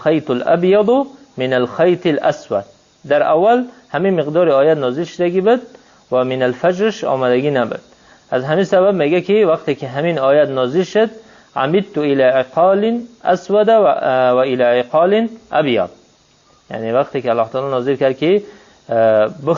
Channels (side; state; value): both; identical; correlation 1.00